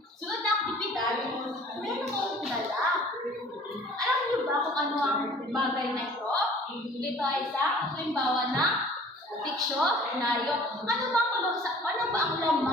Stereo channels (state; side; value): normal; both; correlation 0.50